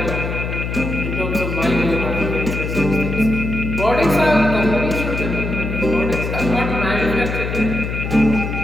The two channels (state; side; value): noise; left; hum, 4 dB below the sound